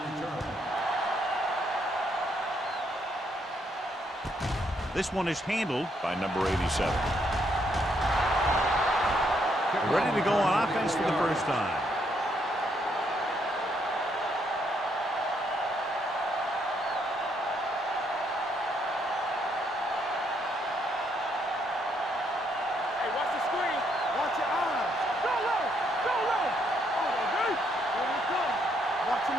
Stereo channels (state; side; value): normal; both; correlation 0.73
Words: This one is handled by number 87. Ready to go on offense for the first time.